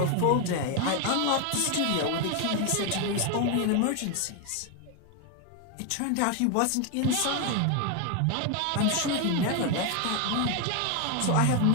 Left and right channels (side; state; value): both; different; correlation 0.01